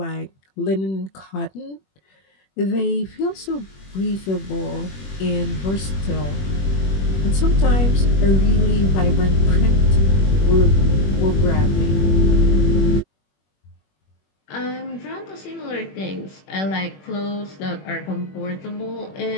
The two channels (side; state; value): right; late; 21 ms